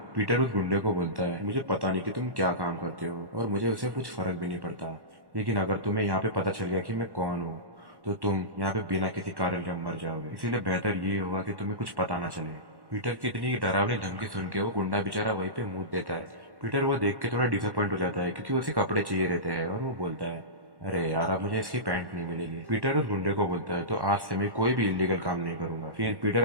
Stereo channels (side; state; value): left; late; 1.1 ms